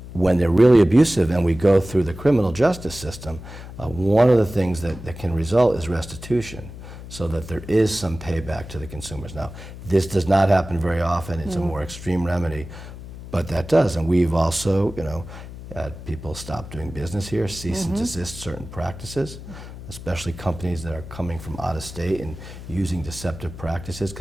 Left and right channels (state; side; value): noise; left; hum, 13 dB below the sound